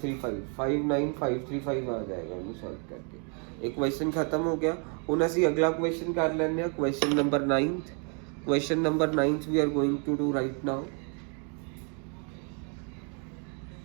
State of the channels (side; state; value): left; quieter; 38.7 dB